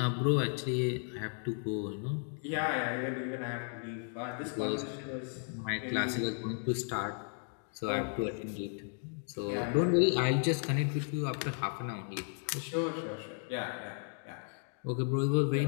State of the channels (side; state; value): right; silent; 55 dB below the other